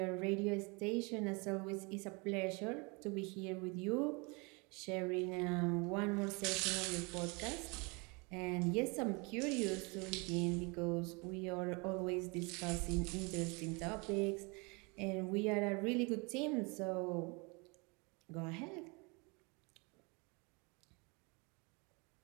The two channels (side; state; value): left; quieter; 29.9 dB